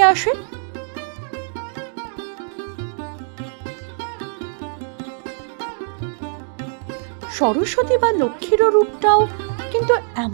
আসে? সরস্বতী বা লক্ষ্মীর রূপটাও কিন্তু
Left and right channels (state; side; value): silent; left; 64 dB below the other